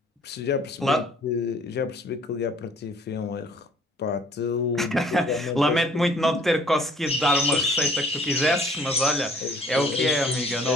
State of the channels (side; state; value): both; normal; correlation 0.56